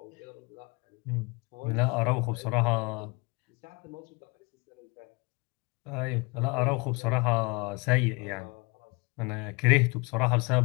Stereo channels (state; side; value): quieter; right; 28.2 dB